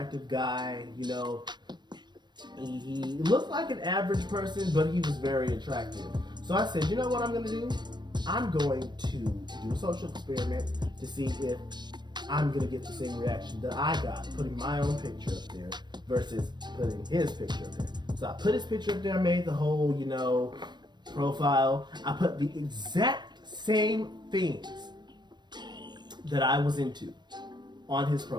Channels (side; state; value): left; late; 0.21 ms